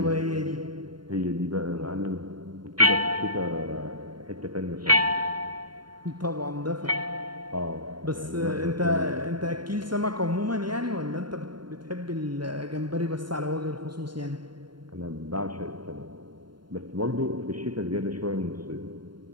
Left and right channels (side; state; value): left; late; 0.72 ms